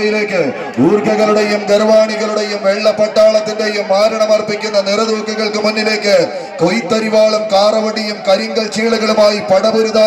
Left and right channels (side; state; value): both; identical; correlation 1.00